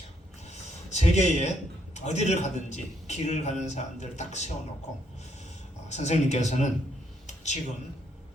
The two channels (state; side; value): normal; both; correlation 0.73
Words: 세계에 어디를 가든지 길을 가는 사람들을 딱 세워놓고 선생님께서는 지금